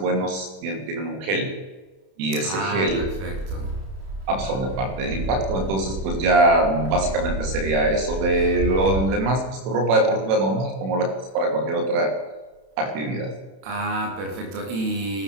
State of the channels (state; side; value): late; left; 31 ms